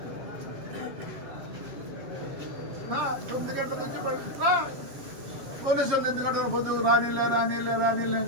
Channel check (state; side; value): late; left; 7.6 ms